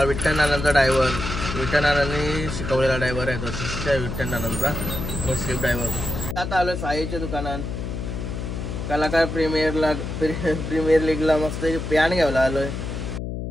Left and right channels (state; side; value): noise; left; hum, 5 dB below the sound